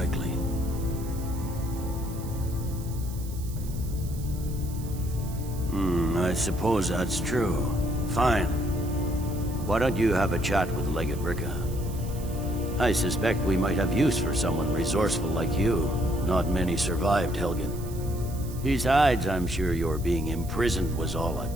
I suppose that's true. Fine. Why don't you have a chat with Legate Ricka? I suspect we might have use for someone resourceful like you. Not many survived, Helgen. Besides, I'm sure your being imprisoned was all a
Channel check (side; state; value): right; noise; hiss, 17 dB below the sound